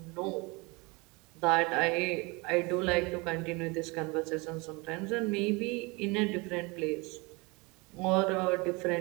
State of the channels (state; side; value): quieter; left; 26.9 dB